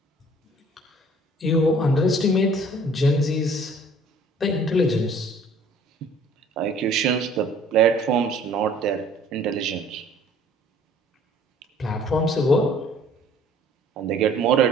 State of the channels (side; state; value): both; normal; correlation 0.54